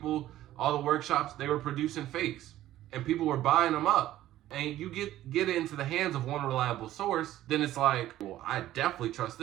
all the workshops, they were producing fakes, and people were buying them up. And you get it into the hands of one reliable source, then it's like, well, I definitely trust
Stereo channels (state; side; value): quieter; left; 13.9 dB